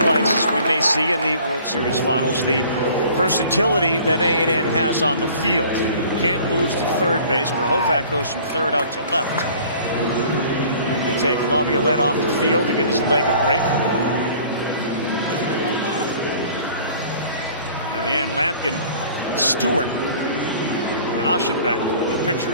we may see in the World Series finals, the versatility that A&M has on the field. Kent moves to third base. Grahovac goes from third out to left. They take La Violette off the field to give his leg a break. In the end, Lamkin, Stewart, and Aschenbeck, the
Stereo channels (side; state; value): both; inverted; correlation -0.50